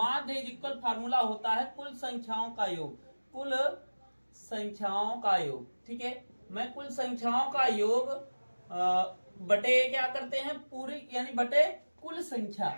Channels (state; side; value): inverted; both; correlation -1.00